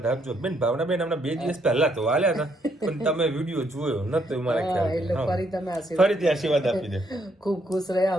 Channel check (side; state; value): both; normal; correlation 0.73